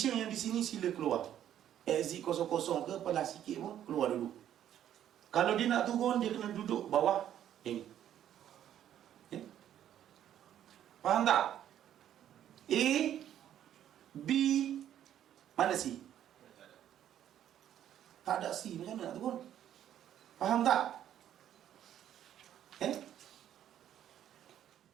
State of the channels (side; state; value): left; quieter; 10.9 dB